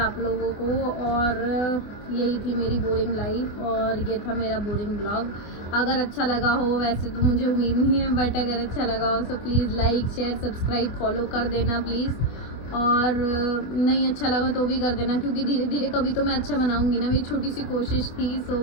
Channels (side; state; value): right; late; 25 ms